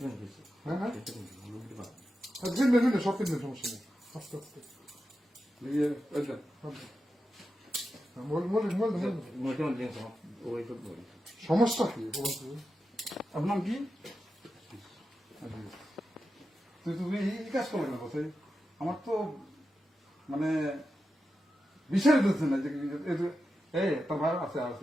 হ্যাঁ হ্যাঁ সব কিনবেন সমস্যা নেই আস্তে আস্তে সমস্যা কি আপনার কি তুমি এই কাজ করবে না কোথায় আমার তো মানে বিষয় দিচ্ছে না যে এই তোর ভাই আছে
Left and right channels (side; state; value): both; normal; correlation 0.90